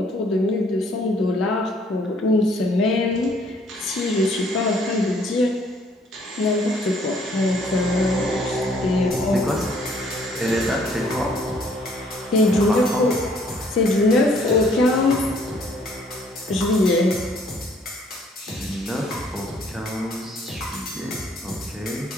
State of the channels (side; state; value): both; normal; correlation 0.62